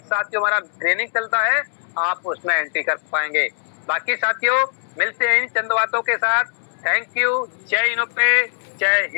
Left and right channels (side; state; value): right; silent; digital silence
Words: हमारा ट्रेनिंग चलता है, आप उसमें एंट्री कर पाएंगे। बाकी साथियों, मिलते हैं इन चंद बातों के साथ। Thank you. जय इनोपे, जय